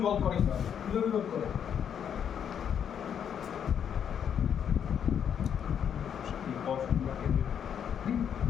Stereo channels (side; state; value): right; quieter; 8.4 dB